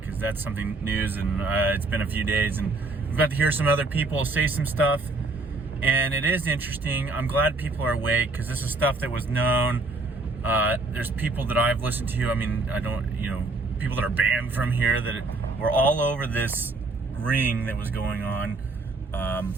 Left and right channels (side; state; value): left; quieter; 3.3 dB